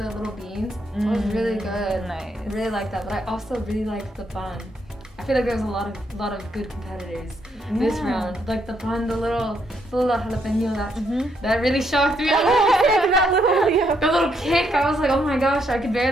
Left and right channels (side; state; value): both; normal; correlation 0.75